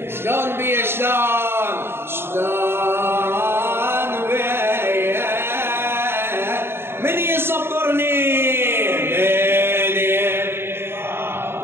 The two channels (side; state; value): left; late; 0.11 ms